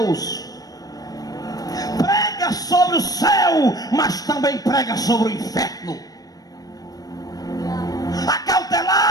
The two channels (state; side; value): late; right; 0.18 ms